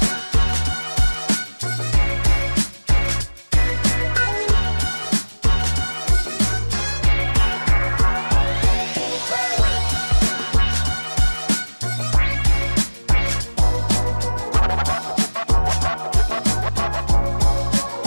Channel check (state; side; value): inverted; both; correlation -1.00